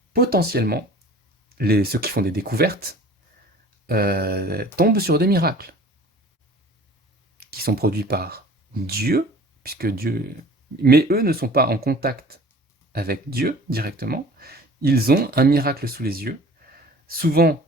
potentiellement, ceux qui font des découvertes, tombent sur des miracles qui sont produits par Dieu, puisque Dieu... Mais eux ne sont pas en contact avec Dieu directement. Ils ont un miracle sous les yeux. Souvent,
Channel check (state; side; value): normal; both; correlation 0.45